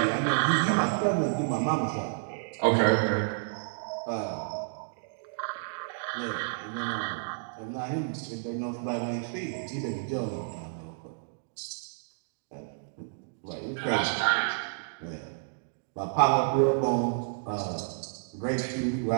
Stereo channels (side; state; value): left; silent; digital silence